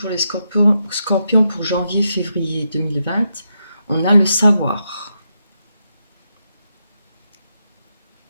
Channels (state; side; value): inverted; both; correlation -0.84